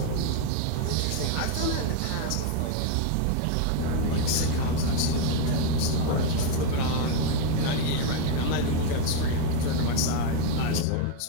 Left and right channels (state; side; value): different; both; correlation 0.01